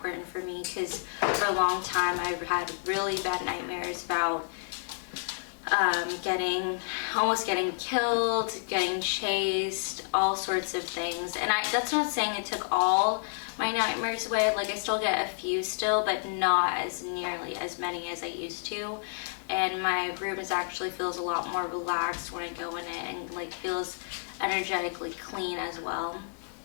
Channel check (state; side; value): silent; right; 58 dB below the other